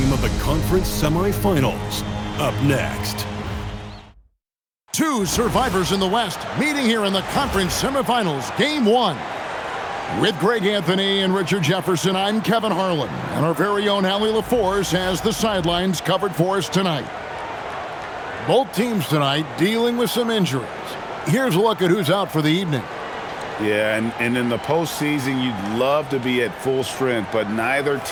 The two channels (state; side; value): identical; both; correlation 1.00